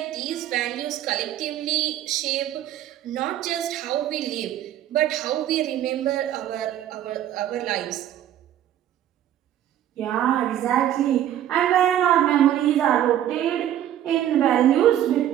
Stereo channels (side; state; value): left; quieter; 11.6 dB